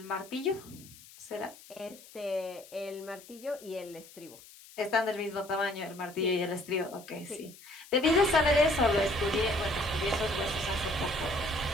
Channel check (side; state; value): left; noise; hiss, 20 dB below the sound